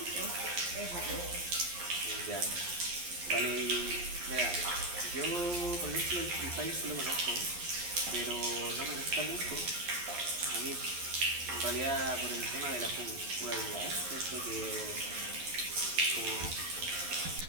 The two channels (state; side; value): late; left; 11 ms